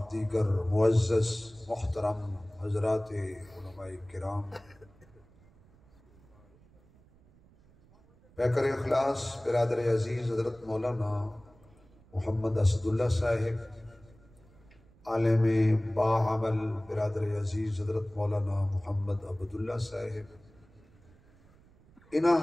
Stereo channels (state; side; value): noise; right; rumble, 27 dB below the sound